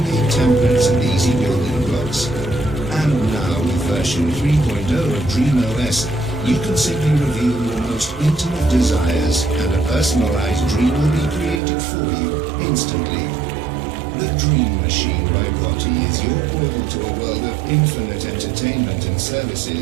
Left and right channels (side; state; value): left; drops out; at 11.6 s